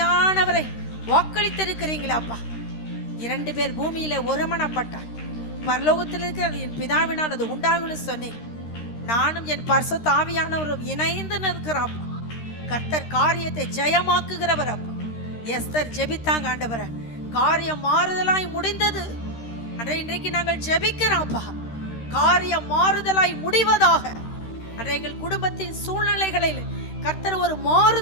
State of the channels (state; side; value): late; right; 13 ms